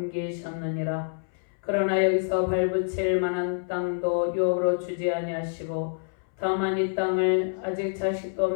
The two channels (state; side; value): silent; right; 60 dB below the other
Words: 그러나 여기서 발붙일 만한 땅도 유업으로 주지 아니하시고 다만 이 땅을 아직 자식도